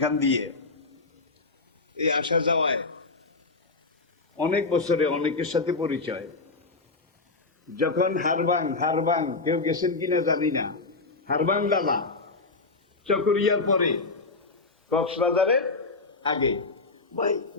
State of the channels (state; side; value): quieter; right; 3.7 dB